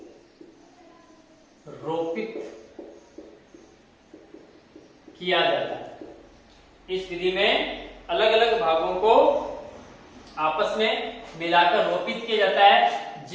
रोपित किया जाता है। इस विधि में अलग अलग भागों को आपस में मिलाकर रोपित किया जाता है,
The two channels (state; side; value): identical; both; correlation 1.00